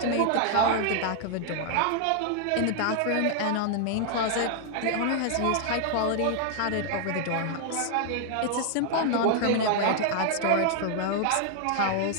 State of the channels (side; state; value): both; different; correlation 0.00